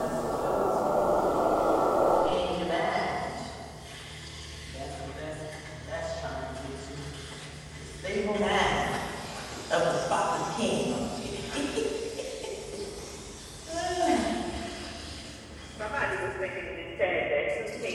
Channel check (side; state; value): both; identical; correlation 1.00